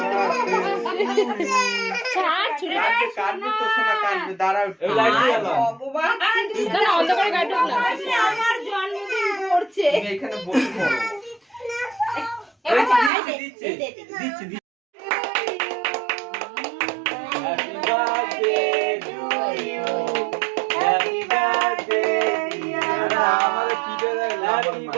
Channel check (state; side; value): drops out; left; at 13.1 s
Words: ছাড় ছুড়ে কাটবে তো শোনা, কাটবে, দাঁড়াও এই লাইট জ্বালাও। না অন্ধকারে কাটুক না। আমার জন্মদিন পড়ছে। তুমি এখানে বসে পড়ো। দিচ্ছে দিচ্ছি happy birthday to you. Happy birthday dear. আমারে কি দেয় হ্যাপি